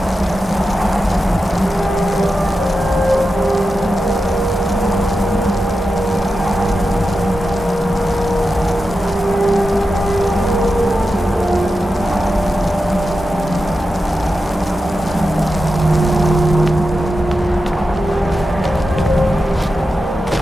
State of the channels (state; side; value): normal; both; correlation 0.90